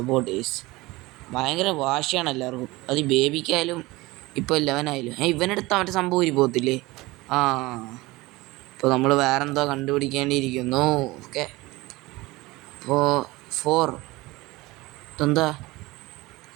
ഭയങ്കര വാശിയാണ് എല്ലാവർക്കും. അത് ബേബിക്കായാലും ഇപ്പോൾ 11 ആയാലും. ഇവനെടുത്ത മറ്റേ സംഭവം ഊരി പോകത്തില്ലേ? ഇപ്പോൾ നമ്മൾ വേറെന്തോ കണ്ടുപിടിക്കേണ്ടിയിരിക്കുന്നു. ഓക്കെ അപ്പോൾ 4 ഇതെന്താ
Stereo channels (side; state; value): left; quieter; 21.0 dB